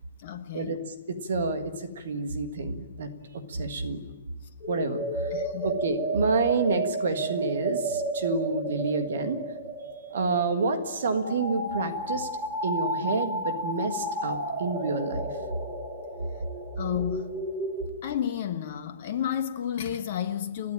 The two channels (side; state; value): both; inverted; correlation -0.44